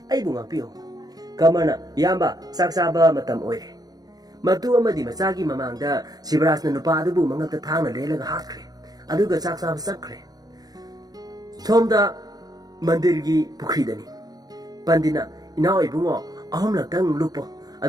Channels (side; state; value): left; late; 0.19 ms